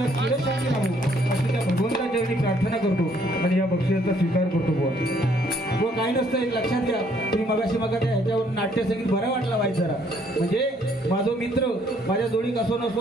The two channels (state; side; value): normal; both; correlation 0.65